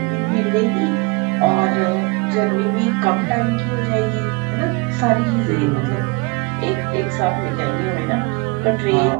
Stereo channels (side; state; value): left; quieter; 27.2 dB